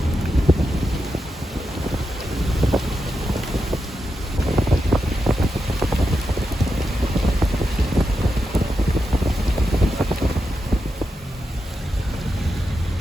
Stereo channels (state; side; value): normal; both; correlation 0.88